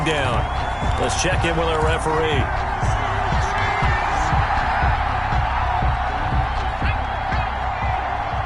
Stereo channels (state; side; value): identical; both; correlation 1.00